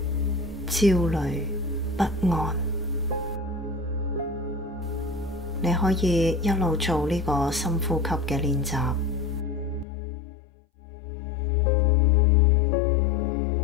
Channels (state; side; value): drops out; right; at 9.9 s